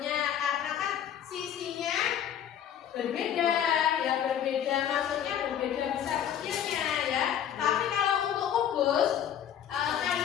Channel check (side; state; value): right; quieter; 9.7 dB